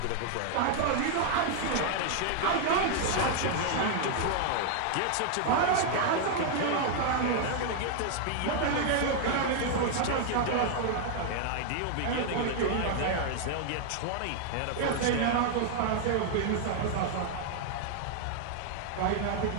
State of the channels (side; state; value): both; different; correlation 0.00